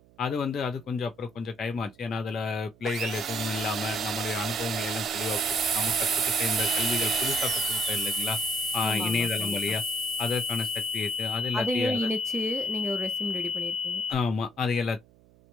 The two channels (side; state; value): right; noise; hum, 28 dB below the sound